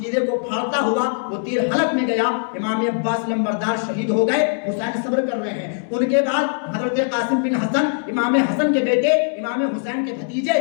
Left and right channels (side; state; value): right; silent; digital silence